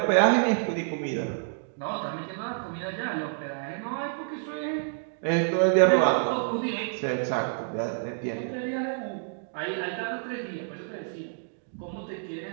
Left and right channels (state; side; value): silent; left; digital silence